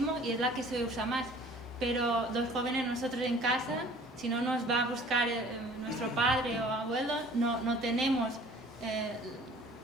y es la que se usa más. Pero los jóvenes, nosotros en casa, si no nos va a buscar nuestro padre o abuelo, no tenemos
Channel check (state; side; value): normal; both; correlation 0.50